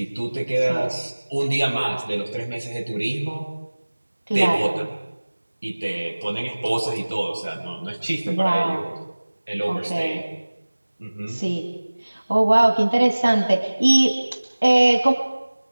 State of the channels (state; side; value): inverted; both; correlation -1.00